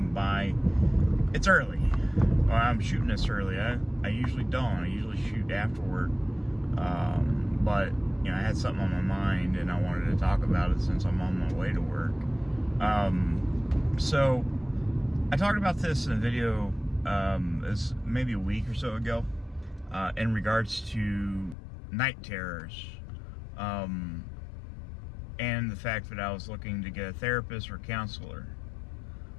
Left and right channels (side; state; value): right; drops out; at 21.6 s